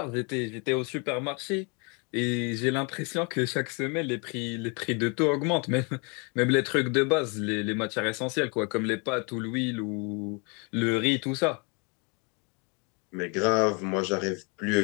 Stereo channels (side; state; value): right; quieter; 33.3 dB